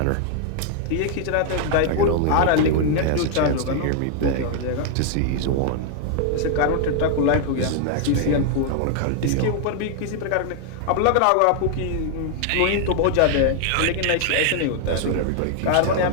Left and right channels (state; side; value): different; both; correlation 0.00